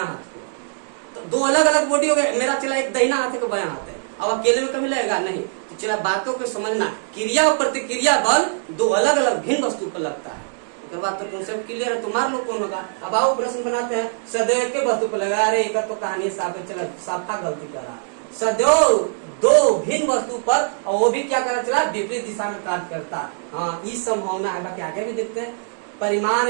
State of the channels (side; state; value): left; silent; digital silence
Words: हाथ को। तो दो अलग अलग बॉडी हो गए, मेरा चला एक दाहिना हाथ है, बायां हाथ है। अब अकेले में कभी लगेगा नहीं। तो चला बातों को समझना, क्रिया और प्रतिक्रिया बल दो अलग अलग भिन्न वस्तु पर लगता है। उसके बाद तो कॉन्सेप्ट क्लियर है, तुम्हारे लोग कौन होगा। अब आओ प्रश्न बनाते हैं, सदैव के वस्तु पर लगा रहे, एक तो कहानी साफ है, चला साफा गलती करा। सदैव दो भिन्न वस्तु पर, और वो भी क्या करा चला, विपरीत दिशा में कार्य करता। हाँ ये संभावना है, बाकी आगे भी देखते हैं। परिमाण